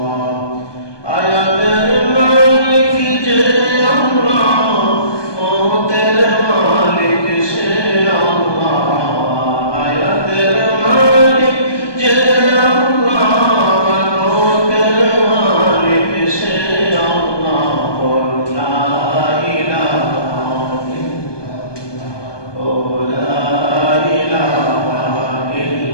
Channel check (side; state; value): right; late; 1.2 ms